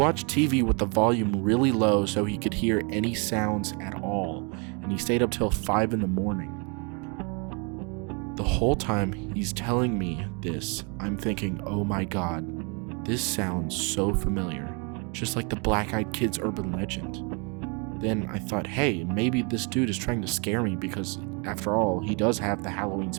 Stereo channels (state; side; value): quieter; left; 33.7 dB